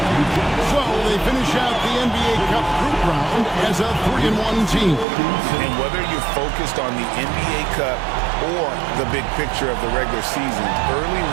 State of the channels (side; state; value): left; drops out; at 5.1 s